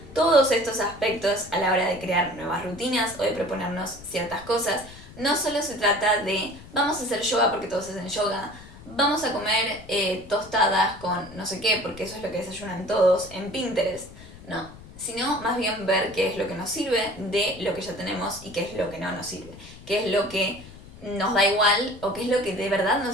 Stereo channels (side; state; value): left; noise; rumble, 18 dB below the sound